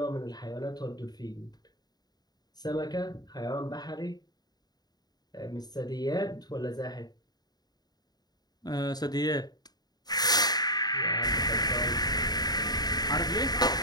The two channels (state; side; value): late; right; 0.19 ms